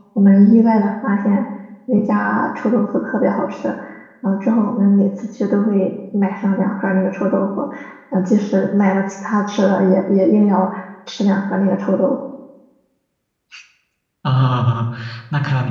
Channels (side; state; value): both; identical; correlation 1.00